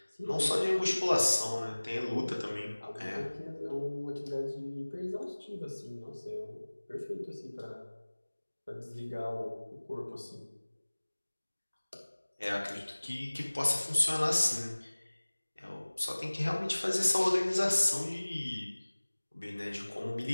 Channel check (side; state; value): both; inverted; correlation -1.00